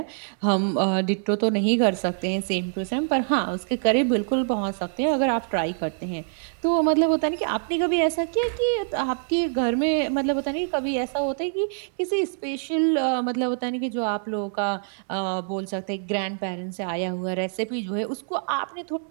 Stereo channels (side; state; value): left; silent; 62 dB below the other